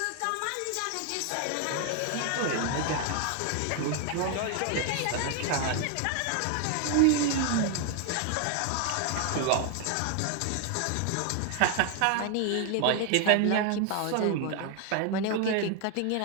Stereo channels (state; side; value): different; both; correlation 0.00